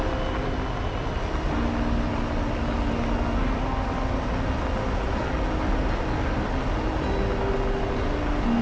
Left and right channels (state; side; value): identical; both; correlation 1.00